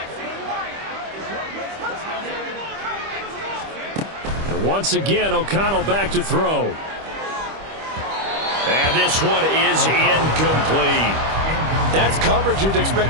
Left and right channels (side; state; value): left; late; 25 ms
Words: And once again, O'Connell back to throw. And this one is incomplete. That's coverage you'd